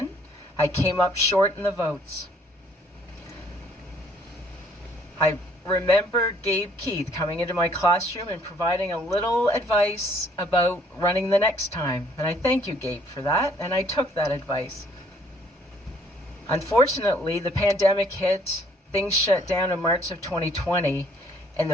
I came up short in the votes. I remember Gabe Keith coming into my classroom and providing a little advice about running the next time. And I thank you, Gabe, for that, and I took that advice. Unfortunately, the pandemic hit, things shut down in March of 2020, and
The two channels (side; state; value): both; normal; correlation 0.62